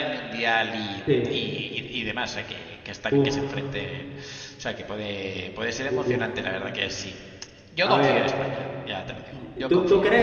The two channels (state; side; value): identical; both; correlation 1.00